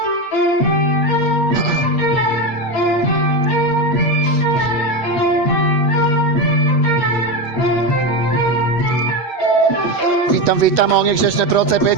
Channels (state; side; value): late; right; 8.2 ms